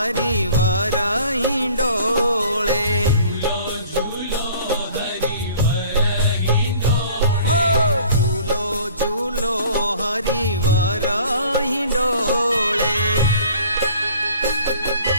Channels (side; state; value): both; inverted; correlation -0.51